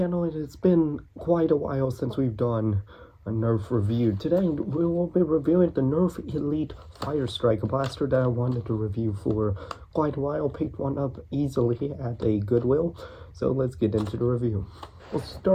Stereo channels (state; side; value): identical; both; correlation 1.00